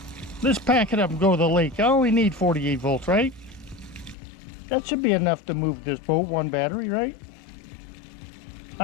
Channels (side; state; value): right; drops out; at 4.2 s